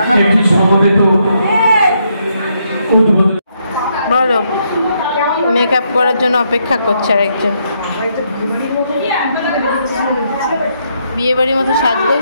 একটি সমবেত উদ্বোধন। বলো, মেকআপ করার জন্য অপেক্ষা করছে আর একজন বিয়ে বাড়ির মতো সাজগোজ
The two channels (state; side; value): inverted; both; correlation -0.76